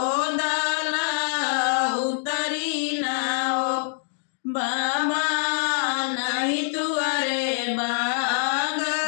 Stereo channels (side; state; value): right; silent; 62 dB below the other